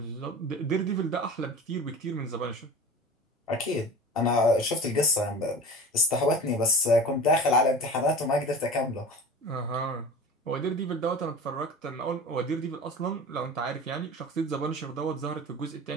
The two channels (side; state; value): both; normal; correlation 0.37